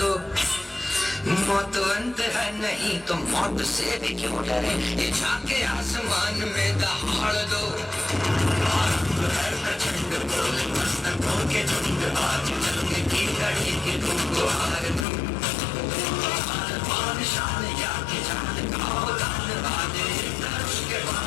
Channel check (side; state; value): right; drops out; at 15.1 s